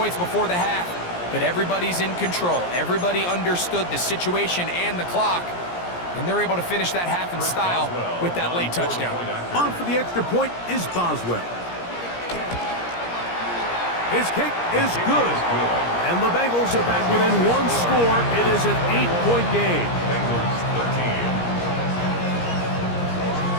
before the half, but everybody's in control. Everybody understood the situation and the clock, and they're able to finish that half in style with that late touchdown. On for the extra point is Boswell. His kick is good, and the Bengals are back within 1 score. It is an 8-point game. Bengals 13.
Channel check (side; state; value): right; late; 17 ms